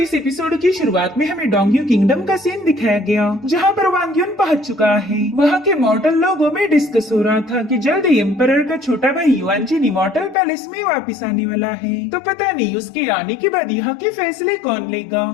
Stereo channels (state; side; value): drops out; right; at 10.4 s